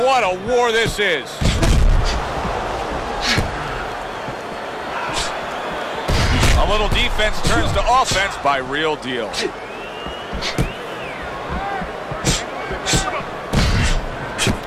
a war this is. A little defense turns to offense by Real Deal.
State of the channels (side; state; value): both; identical; correlation 1.00